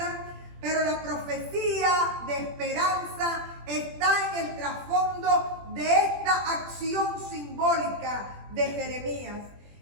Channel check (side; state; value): left; late; 20 ms